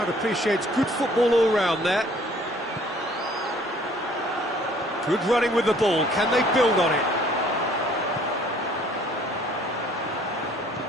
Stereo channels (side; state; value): both; normal; correlation 0.57